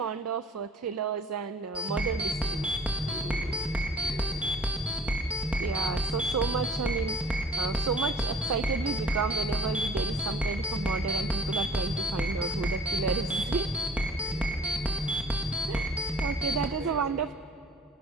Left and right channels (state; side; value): normal; both; correlation 0.49